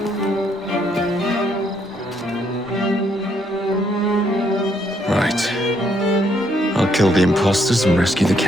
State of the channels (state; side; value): normal; both; correlation 0.72